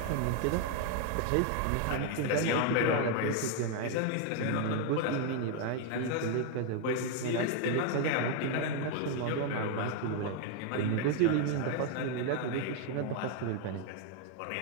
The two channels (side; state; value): both; different; correlation 0.01